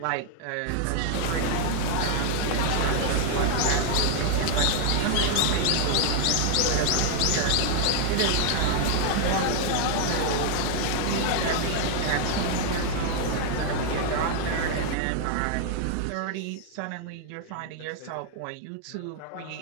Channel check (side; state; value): both; different; correlation 0.00